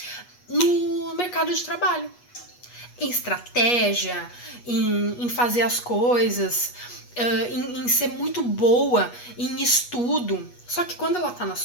no mercado de trabalho. Em estratégia, em fazer as coisas, em ser muito boa em estudo. Só que quando ela tá na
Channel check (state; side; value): late; right; 8.3 ms